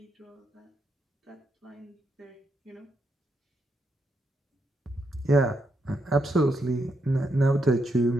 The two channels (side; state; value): both; normal; correlation 0.80